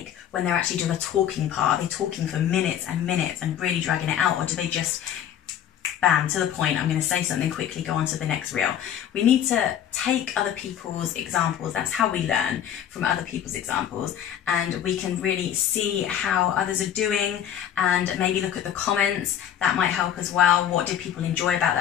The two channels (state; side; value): quieter; right; 9.9 dB